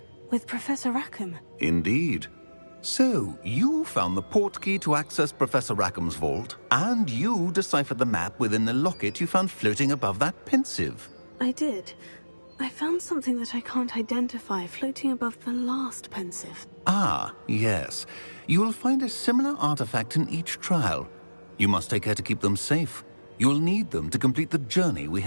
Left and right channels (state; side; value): inverted; both; correlation -1.00